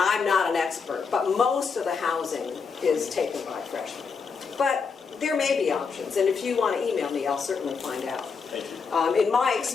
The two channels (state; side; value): quieter; right; 5.4 dB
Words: not an expert, but most of the housing is taken by freshmen. But there may be options, and if you want to email me, I'll certainly find out. Thank you. In my